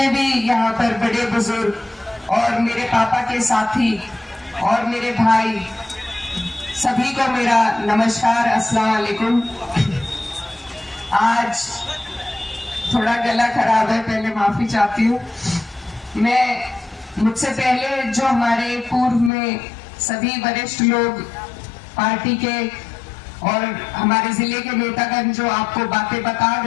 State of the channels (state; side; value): drops out; right; at 19.3 s